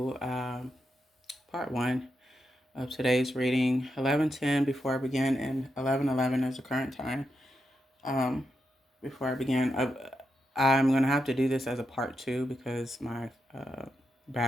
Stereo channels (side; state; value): both; normal; correlation 0.85